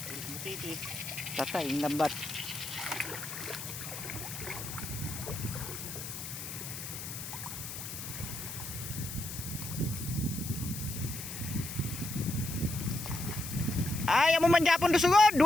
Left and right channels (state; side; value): noise; left; hiss, 8 dB below the sound